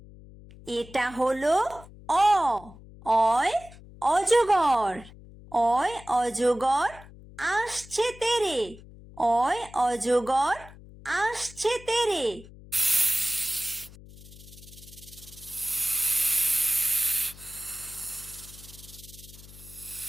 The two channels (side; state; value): left; noise; hum, 19 dB below the sound